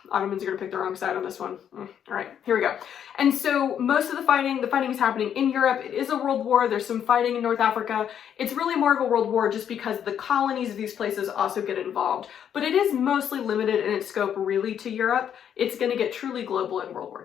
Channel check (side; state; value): right; quieter; 9.0 dB